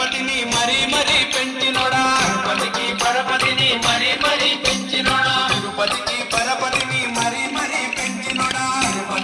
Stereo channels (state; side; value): identical; both; correlation 1.00